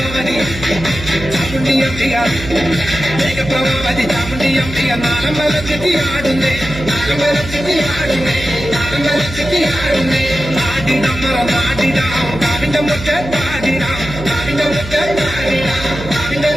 ചാമുണ്ടി അമ്പിക മേഘപ്രഭാവതി ചാമുണ്ടി അമ്പിക നാളം വലച്ചെത്തി ആടുന്നേ നാളം വലച്ചെത്തി ആടുന്നേ നാളം വലച്ചെത്തി ആടുന്നേ പാടിടമ്മറ നാടിടാം കാവിന്റെ മുറ്റ പാടിടാം കാവിന്റെ മുറ്റ പാടിടാം കാവിന്റെ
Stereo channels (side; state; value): right; noise; hum, 11 dB below the sound